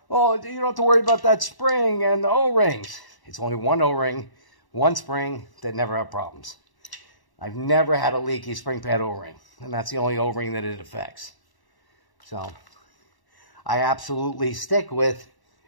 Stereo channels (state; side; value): late; right; 1.1 ms